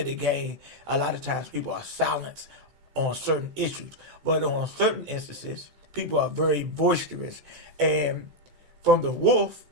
the gang, a lot of times people are silenced on certain issues. But on certain instances, people are very boisterous. And from the wolf,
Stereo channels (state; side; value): late; left; 16 ms